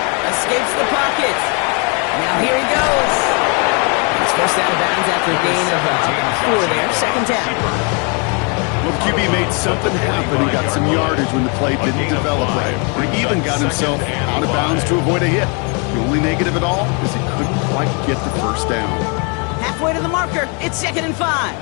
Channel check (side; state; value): right; quieter; 35.1 dB